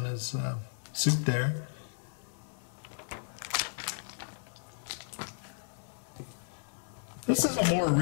his suit there. This is a more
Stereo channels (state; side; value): silent; right; 55 dB below the other